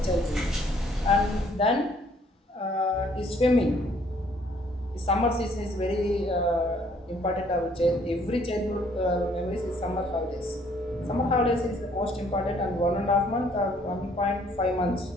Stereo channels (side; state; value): both; normal; correlation 0.63